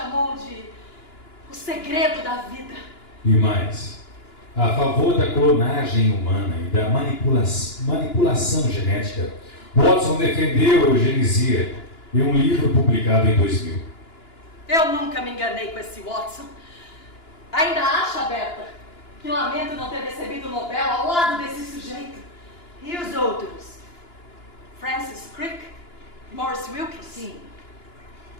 de o segredo da vida. E mais, a favor da clonagem humana e da manipulação genética, Watson defendeu a eugenia em um livro publicado em 2000. Eu nunca me enganei com esse Watson. Ainda acha, Berta, que lamento não ter recebido o Nobel ao lado desse sujeito? E os outros? Francis Crick? Morris Wilkins? Sim.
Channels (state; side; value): late; right; 2.9 ms